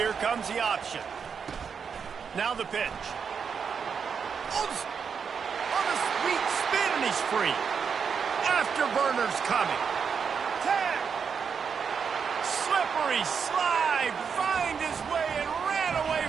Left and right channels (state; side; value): quieter; left; 6.4 dB